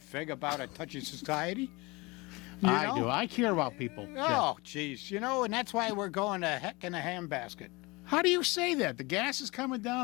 about a touchy society. I do. I care about people. Oh, jeez. And that's why we're going to heck in a handbasket. How do you say that? The gas is coming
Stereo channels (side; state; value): right; quieter; 24.6 dB